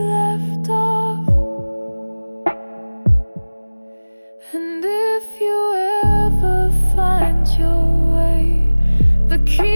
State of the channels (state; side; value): inverted; both; correlation -1.00